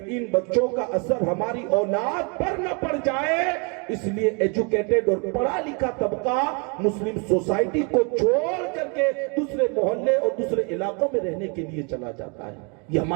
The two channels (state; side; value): quieter; left; 33.8 dB